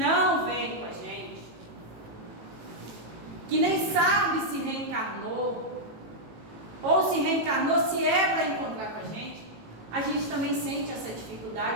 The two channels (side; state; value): left; late; 18 ms